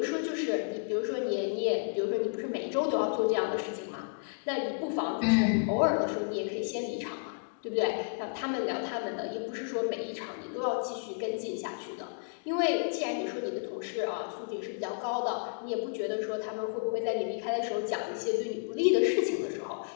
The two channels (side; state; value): right; silent; digital silence